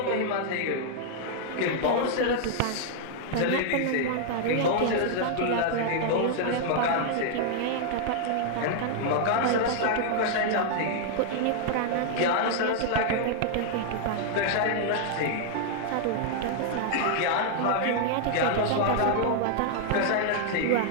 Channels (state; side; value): different; both; correlation -0.01